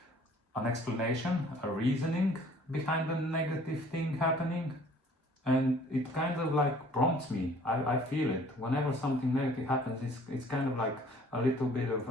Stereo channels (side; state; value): both; normal; correlation 0.54